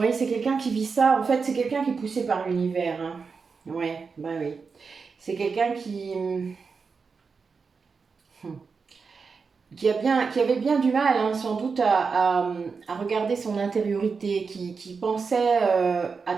c'est quelqu'un qui vit ça. En fait, c'est quelqu'un qui est poussé par l'univers. Hein. Ouais, bah oui. C'est quelqu'un qui avait bien du mal, hein, sans doute, à regarder son intériorité, qui pensait à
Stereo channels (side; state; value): left; quieter; 5.1 dB